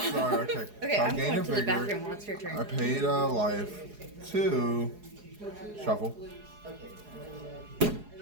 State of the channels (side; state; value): left; late; 4.8 ms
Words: Sorry. Okay. Okay, So I I'm gained going a to the vigor. bathroom. What's your I turn? paid a life to shuffle.